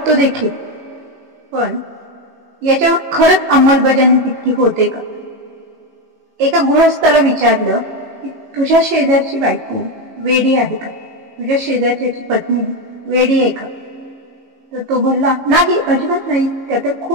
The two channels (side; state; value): left; late; 18 ms